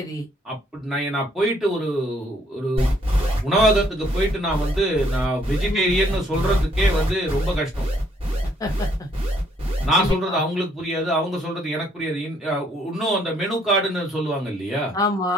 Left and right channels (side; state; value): both; normal; correlation 0.67